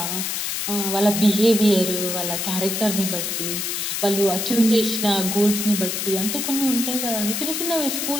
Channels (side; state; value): left; noise; hiss, 2 dB below the sound